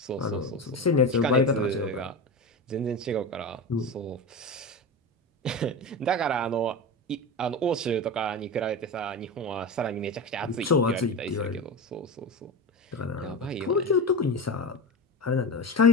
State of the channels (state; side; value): normal; both; correlation 0.24